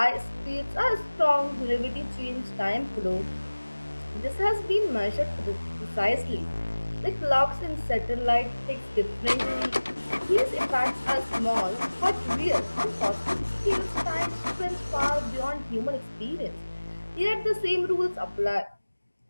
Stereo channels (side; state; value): both; inverted; correlation -1.00